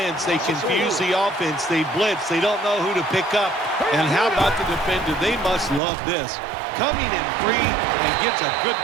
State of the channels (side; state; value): left; drops out; at 5.8 s